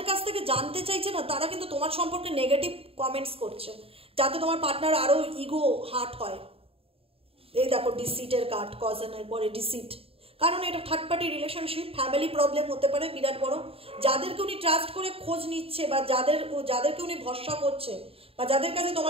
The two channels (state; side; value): late; left; 0.27 ms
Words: কাছ থেকে জানতে চাইছে না, তারা কিন্তু তোমার সম্পর্কে নেগেটিভ কমেন্টস করছে, যাতে তোমার পার্টনার আরও ইগো হার্ট হয়। এই দেখো ডিসিটের কার্ড, কজনের পরে ডিসিট, কারণ এটা third party relationship, family problem হতে পারে বিরাট বড়। যাদেরকে উনি ট্রাস্ট করে খোঁজ নিচ্ছে বা যাদেরকে উনি ভরসা করছে বা যাদের কাছে